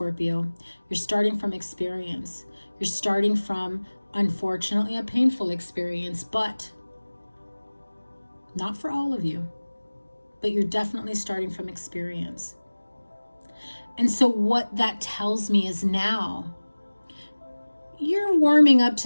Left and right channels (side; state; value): both; inverted; correlation -1.00